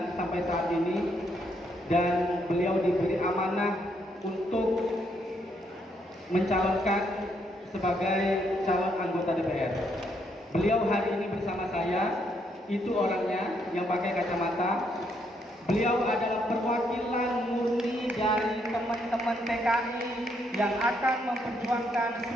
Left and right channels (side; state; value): both; normal; correlation 0.74